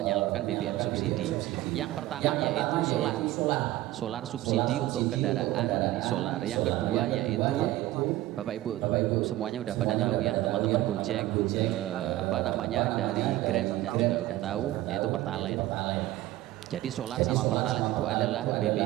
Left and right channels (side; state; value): left; quieter; 16.0 dB